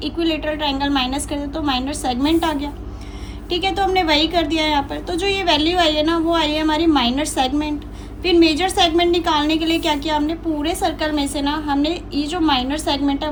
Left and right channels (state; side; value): identical; both; correlation 1.00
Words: ट्रायंगल माइनस कर दिया तो माइनर सेगमेंट आ गया। ठीक है, तो हमने वही कर दिया यहाँ पर। तो जो ये वैल्यू आई है ना वो आई है हमारी माइनर सेगमेंट। फिर मेजर सेगमेंट निकालने के लिए क्या किया हमने, पूरे सर्कल में से ना हमने ये जो माइनर सेगमेंट है